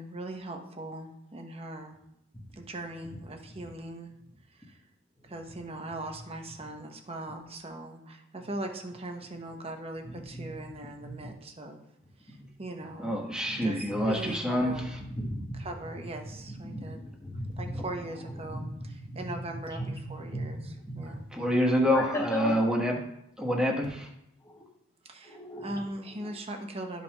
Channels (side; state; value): both; normal; correlation 0.67